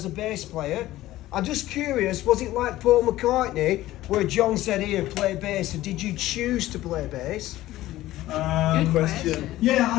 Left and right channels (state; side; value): quieter; right; 15.7 dB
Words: a bass player. I'm just curious, was it like Paul McCartney, where John said, "Ian, play bass," and did you choose to play bass? Good question.